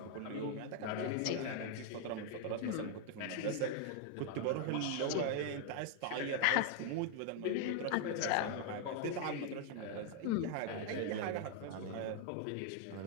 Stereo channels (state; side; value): different; both; correlation 0.00